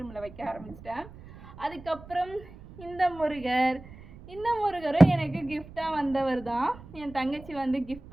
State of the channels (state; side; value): noise; right; rumble, 18 dB below the sound